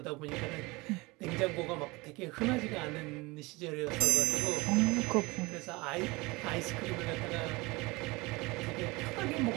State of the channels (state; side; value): quieter; left; 23.6 dB